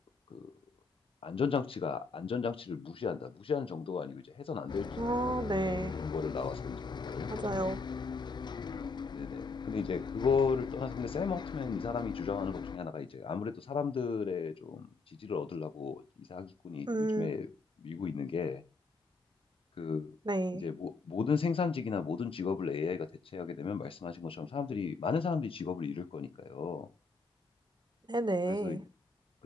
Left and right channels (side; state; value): right; quieter; 3.7 dB